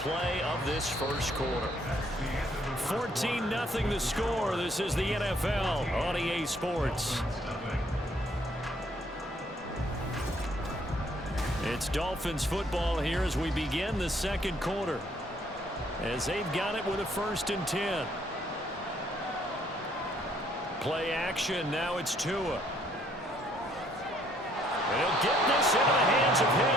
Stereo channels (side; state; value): both; normal; correlation 0.66